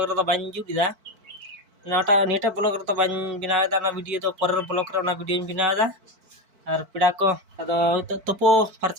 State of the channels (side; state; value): left; late; 4.5 ms